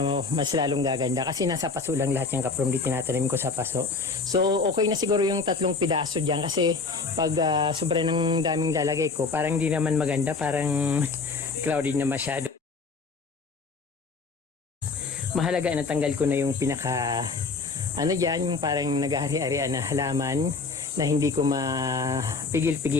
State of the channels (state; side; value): quieter; right; 4.3 dB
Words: mas lalong gaganda. Kasi nasa paso lang lahat yung kapromdi, tinatanim ko sa paso. So, okay na siguro yung 3 pidaso dyan. Kasi pag sobra ng daming lalagay ko, parang di naman maganda. Parang crowded na masyado. Mahalaga na tanggal ko na yung pinaka, dyan, yung parang naghahari-harian na halaman na hindi ko